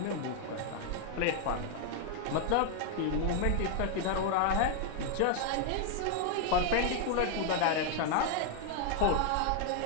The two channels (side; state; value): both; different; correlation 0.00